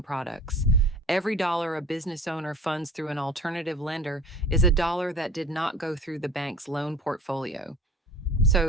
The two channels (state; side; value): normal; both; correlation 0.42